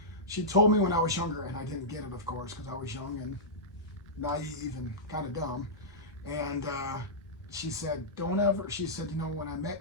She told me when I was younger, and I didn't get it, of course, because I was young and naive and kind of dumb. And she said, she said, when I met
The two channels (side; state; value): both; normal; correlation -0.13